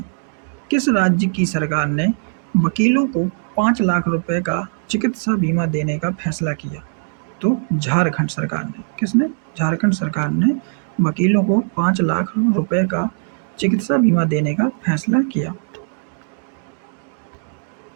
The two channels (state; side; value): silent; left; digital silence